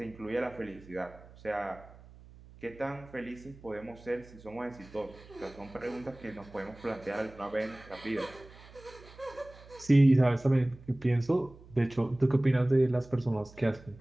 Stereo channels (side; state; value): right; noise; hum, 21 dB below the sound